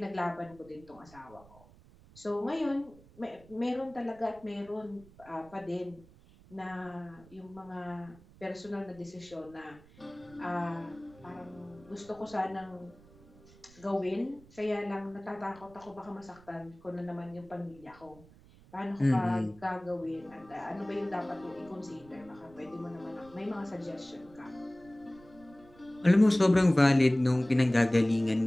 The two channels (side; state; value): right; noise; rumble, 24 dB below the sound